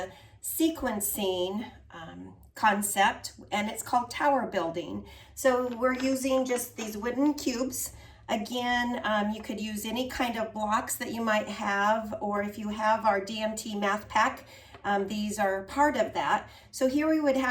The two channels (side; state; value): both; identical; correlation 1.00